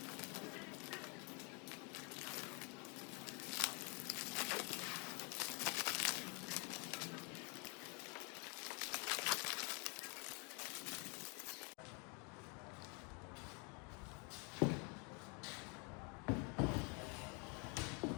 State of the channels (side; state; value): right; quieter; 34.2 dB